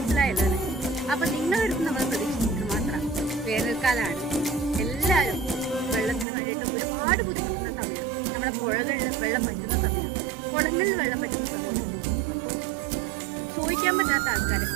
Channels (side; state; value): left; drops out; at 6.2 s